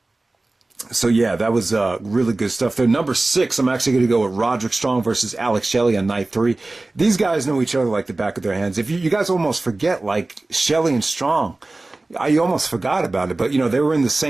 So yeah, that was, really good stuff there. Number 6, I'm actually going to go with Roderick Strong versus Alex Shelley on night 3. These guys know each other like the back of their hands. If you guys almost forget, like, Shelley and Strong, I almost forgot about it, but they were in the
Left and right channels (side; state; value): left; quieter; 3.0 dB